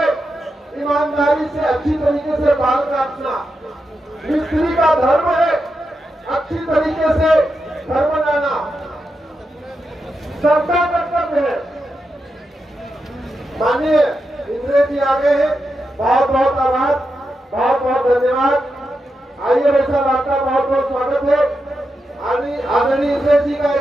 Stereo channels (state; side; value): normal; both; correlation 0.87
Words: ईमानदारी से अच्छी तरीके से बाल काटना। मिस्त्री का धर्म है अच्छी तरीके से घर बनाना। सबका कर्तव्य है। माननीय इंद्रेश जी आ गए हैं, बहुत बहुत आभार, बहुत बहुत धन्यवाद। आइए भाई साहब, आपका बहुत बहुत स्वागत है। आदरणीय इंद्रेश जी का